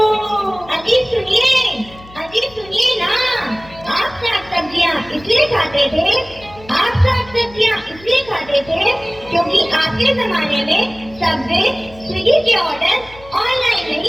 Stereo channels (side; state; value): left; noise; hum, 21 dB below the sound